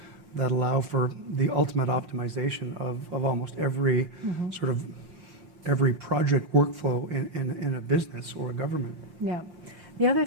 that allow for the ultimate optimization of almost every sort of every project workflow in a business or a government. Yeah. The other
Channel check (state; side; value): late; left; 5.7 ms